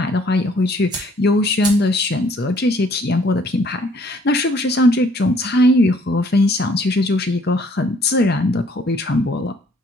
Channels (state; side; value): normal; both; correlation 0.61